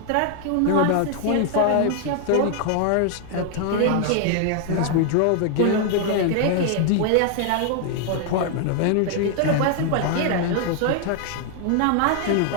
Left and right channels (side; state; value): both; different; correlation 0.00